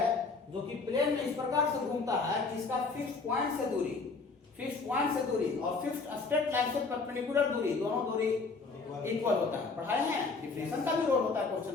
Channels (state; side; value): quieter; right; 4.3 dB